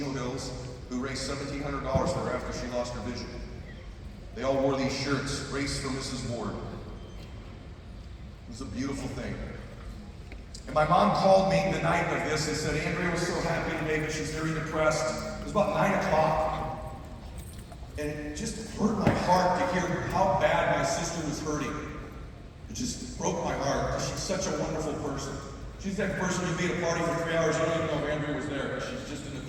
Hills who raised $1,700 for her after she lost her vision. They all wore these shirts, Race for Mrs. Ward. It was a beautiful thing. And my mom called me the night of this and said, Andrea was so happy today, but she's very depressed. It was about 9 o'clock. And it just hurt my heart to hear how bad my sister was hurting. It just broke my heart because she's such a wonderful person. She's that person who'd be at a party for 3 hours, you don't even know if Andrea was there. She's just in the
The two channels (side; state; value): both; identical; correlation 1.00